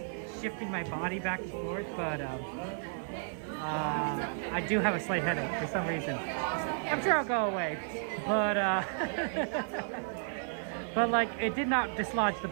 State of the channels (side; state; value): left; silent; digital silence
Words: shifting my body back and forth, but I do have a slight headache for some reason. I'm sure I'll go away, but but like it did not dislodge the